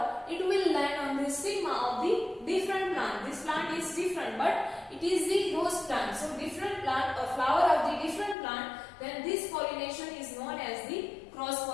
it will land on the stigma of the different plant. This plant is different, but it is the rose plant. So different plant or flower of the different plant, then this pollination is known as the cross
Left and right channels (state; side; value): drops out; right; at 8.3 s